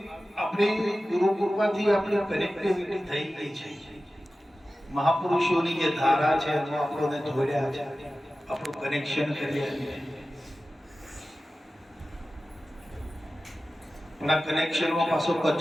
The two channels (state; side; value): normal; both; correlation 0.95